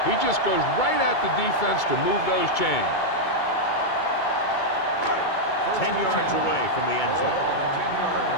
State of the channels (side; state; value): right; late; 2.2 ms